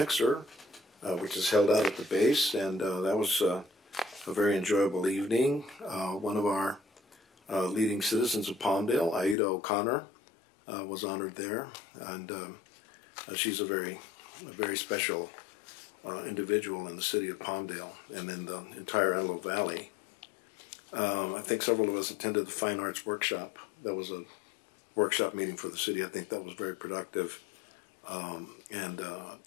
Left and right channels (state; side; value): drops out; right; at 9.3 s